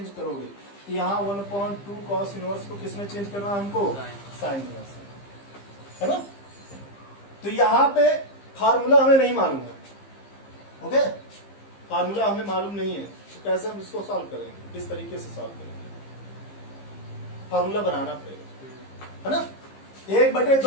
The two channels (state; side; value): late; right; 15 ms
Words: करोगे। यहाँ 1/2 कॉस इनवर्स को किसमें चेंज करना है हमको, साइन इनवर्स में, है ना। तो यहाँ पे फार्मूला हमें नहीं मालूम है, ओके, फार्मूला हमें मालूम नहीं है, तो कैसे हम इसको सॉल्व करेंगे, किस तरीके से सॉल्व करेंगे, फार्मूला बनाना पड़ेगा, है ना।